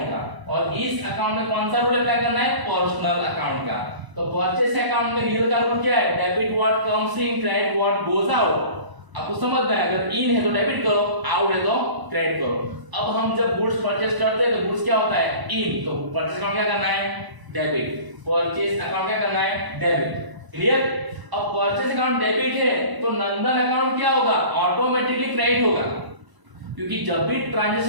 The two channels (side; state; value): left; late; 1.0 ms